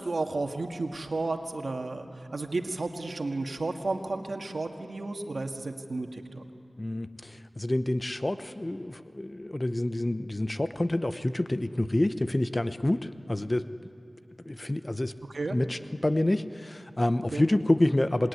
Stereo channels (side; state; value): both; normal; correlation 0.98